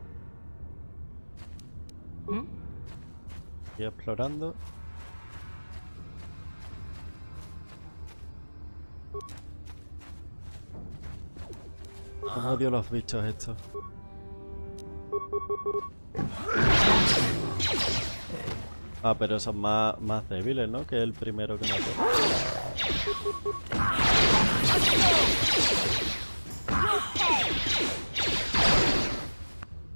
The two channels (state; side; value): inverted; both; correlation -1.00